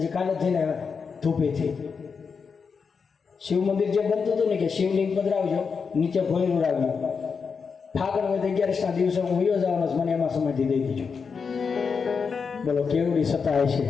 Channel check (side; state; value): right; quieter; 5.6 dB